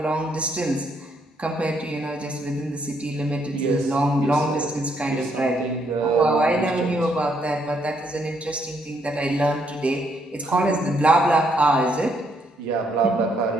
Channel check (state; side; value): normal; both; correlation 0.73